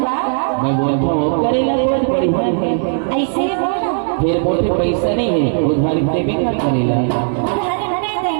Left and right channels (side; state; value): left; silent; digital silence